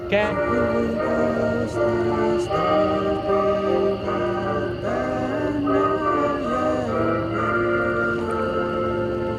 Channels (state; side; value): identical; both; correlation 1.00